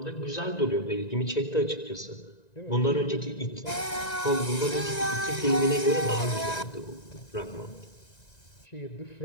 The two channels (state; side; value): late; right; 1.9 ms